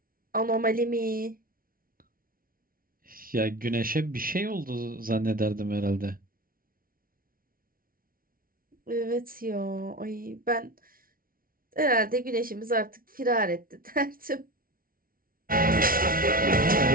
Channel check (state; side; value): late; left; 0.42 ms